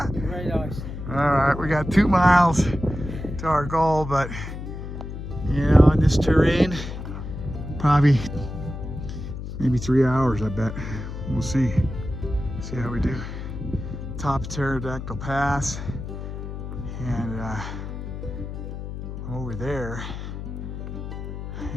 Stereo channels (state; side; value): noise; left; hum, 8 dB below the sound